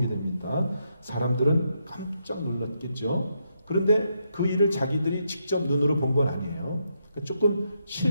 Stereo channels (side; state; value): both; inverted; correlation -0.80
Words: 됩니다. 사람들은 깜짝 놀랐겠죠. 그런데 그 일을 자기들이 직접 눈으로 본 건 아니에요. 조금